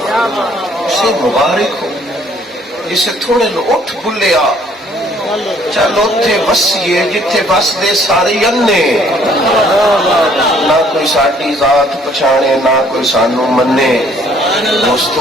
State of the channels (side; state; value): both; normal; correlation 0.61